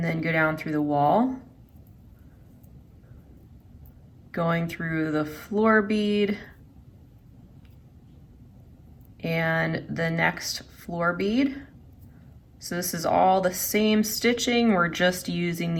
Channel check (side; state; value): both; identical; correlation 1.00